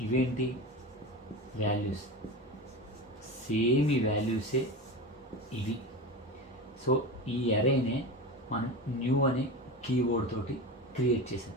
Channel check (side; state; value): both; normal; correlation 0.26